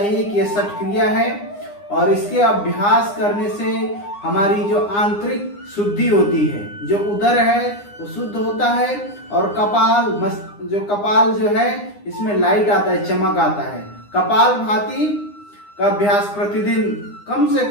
कि यह षट क्रिया है और इसके अभ्यास करने से हमारी जो आंतरिक शुद्धि होती है, जो उदर है वो शुद्ध होता है और कपाल जो है इसमें लाइट आता है, चमक आता है। कपालभाति का अभ्यास प्रतिदिन कम से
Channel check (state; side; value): late; right; 9.8 ms